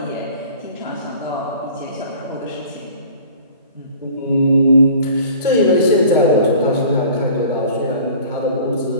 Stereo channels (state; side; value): inverted; both; correlation -0.46